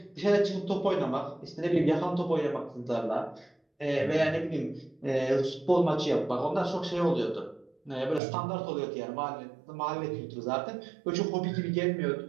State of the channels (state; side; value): drops out; left; at 8.2 s